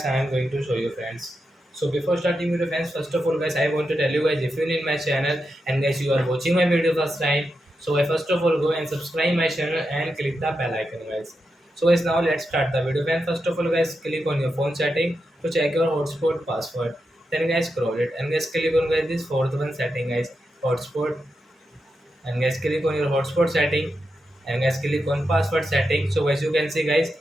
I am going to show you friends. So before starting video friends, first of all guys, I want to tell you guys if you need my channel and guys you are watching my video first time, so I first of all go and subscribe my channel and click the bell icon guys. So guys now let's start the video. And first of all guys click on your phone setting to check your hotspot password. Then guys scroll it and guys click on guys this fourth one setting guys, hotspot, and guys click on your hotspot setting and guys click on password setting. So guys you can see guys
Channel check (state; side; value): normal; both; correlation 0.87